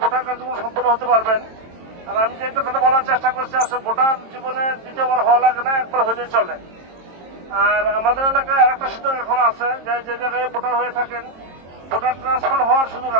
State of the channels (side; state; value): left; late; 22 ms